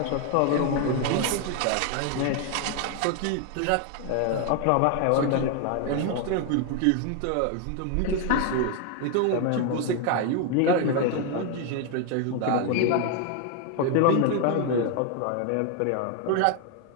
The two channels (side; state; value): both; different; correlation 0.00